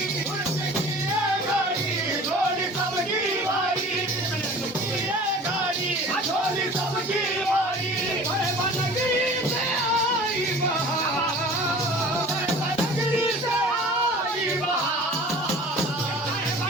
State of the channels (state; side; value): normal; both; correlation 0.43